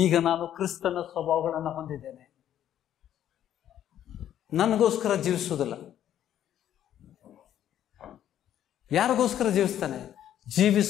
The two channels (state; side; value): quieter; right; 11.0 dB